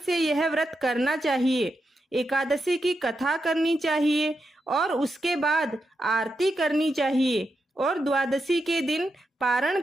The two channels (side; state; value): both; normal; correlation 0.86